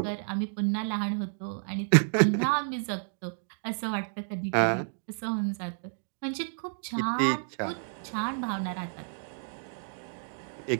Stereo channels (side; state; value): left; silent; digital silence